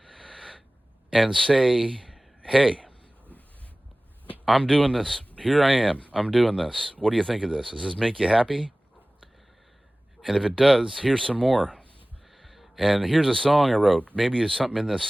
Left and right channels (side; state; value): both; normal; correlation 0.98